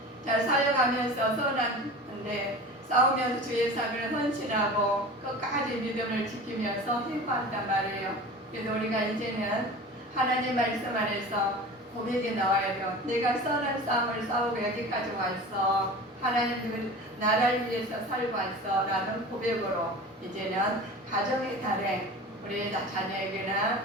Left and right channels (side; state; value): both; normal; correlation 0.36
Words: 사역하면서 선한데 싸우면서 주의 사역을 헌신하고 끝까지 믿음을 지키면서 힘받단 말이에요. 그래서 우리가 이제는 하나님 말씀 안에서 고백이 나와야 돼요. 내가 선한 싸움을 싸우고 여기까지 왔어. 하나님 나라를 위해서 살고 왔어. 라는 고백으로 이제는 가정의 달에 우리 자녀에게나